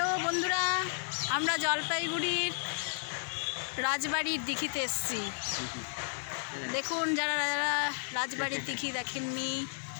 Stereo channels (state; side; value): silent; right; digital silence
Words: বন্ধুরা, আমরা জলপাইগুড়ির রাজবাড়ির দিঘিতে এসেছি। দেখুন, যারা যারা রাজবাড়ির দিঘি দেখেননি,